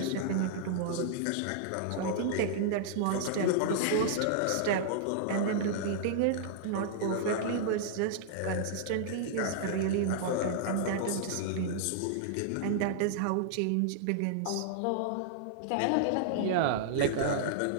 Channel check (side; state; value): both; different; correlation -0.01